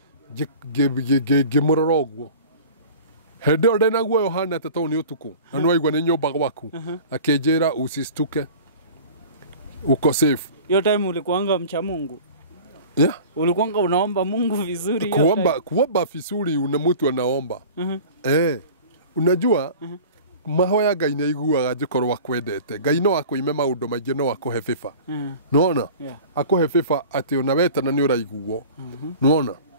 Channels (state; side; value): inverted; both; correlation -0.40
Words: ngimurora uguo hende ore na guo Yohana to ni utuku na no aigwa ni nyumba gwaku akinjira usistuke uko safe. Hiyo time ulikuanga mcha Mungu? Yeah. Ulikuanga unaomba Mungu vizuri? Kuomba vizuri una mtu anaomba. Unajua mahoya Ngai nĩ aiguaga njĩkorwo akwendete. Ngai no akũime maũndũ maingĩ no akũhe bĩba. Nĩwona? Akũhe bĩba atĩ ona wetana nĩ ũraiguo. Nĩwona?